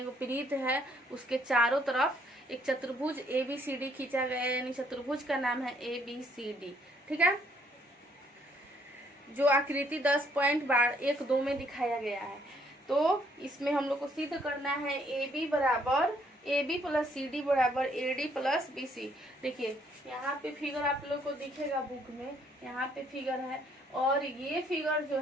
वृत्त है उसके चारों तरफ एक चतुर्भुज ABCD खींचा गया है, यानी चतुर्भुज का नाम है ABCD। ठीक है, जो आकृति 10.12 में दिखाया गया है। तो इसमें हम लोग को सिद्ध करना है AB बराबर AB प्लस CD बराबर AD प्लस BC। देखिए यहाँ पे फिगर आप लोग को दिखेगा बुक में, यहाँ पे फिगर है, और ये फिगर जो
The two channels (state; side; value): normal; both; correlation 0.67